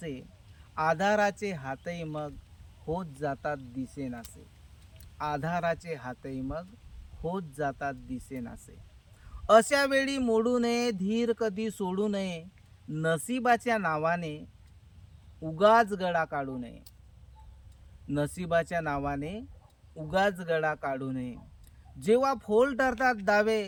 आधाराचे हातही मग होत जातात दिसेनासे. आधाराचे हातही मग होत जातात दिसेनासे. अशा वेळी मोडू नये धीर कधी सोडू नये. नशिबाच्या नावाने उगाच गळा काढू नये. नशिबाच्या नावाने उगाच गळा काढू नये. जेव्हा फोल ठरतात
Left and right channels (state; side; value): identical; both; correlation 1.00